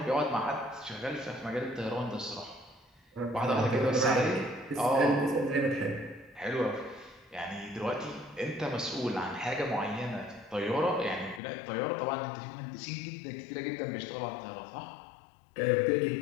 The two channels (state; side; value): drops out; right; at 11.4 s